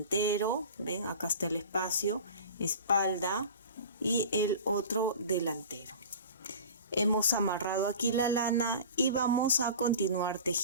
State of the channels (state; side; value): inverted; both; correlation -0.38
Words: ven, acá está el espacio, espalda y el otro delantero. Hemos amarrado aquí la lana y vamos a continuar